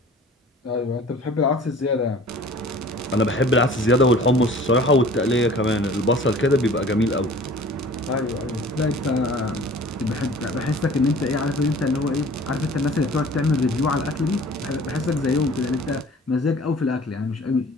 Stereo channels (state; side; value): normal; both; correlation 0.47